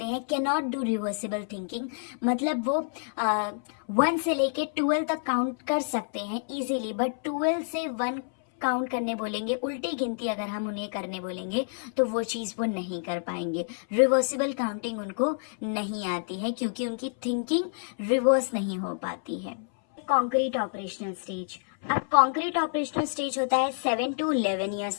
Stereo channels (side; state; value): right; silent; 59 dB below the other